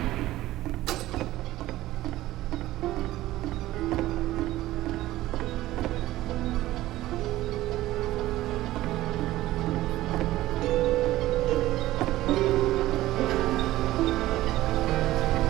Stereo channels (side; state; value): left; quieter; 16.0 dB